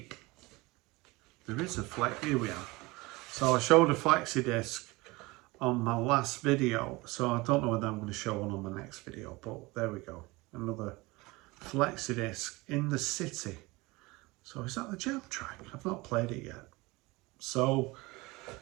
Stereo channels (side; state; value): left; quieter; 22.8 dB